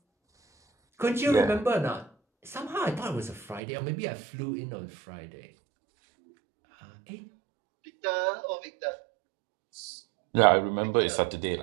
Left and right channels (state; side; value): drops out; left; at 3.6 s